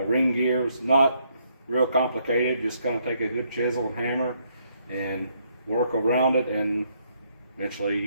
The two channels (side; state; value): both; inverted; correlation -0.72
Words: gear is not real complicated. Just kind of take a good chisel and hammer and work around it, and